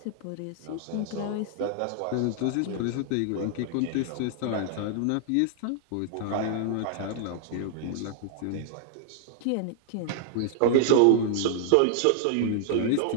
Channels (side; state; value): both; different; correlation -0.01